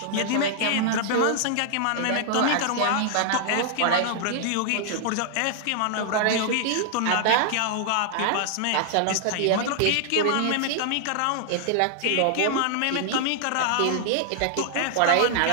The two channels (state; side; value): different; both; correlation 0.00